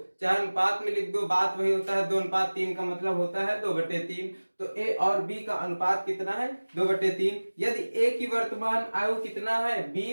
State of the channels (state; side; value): inverted; both; correlation -1.00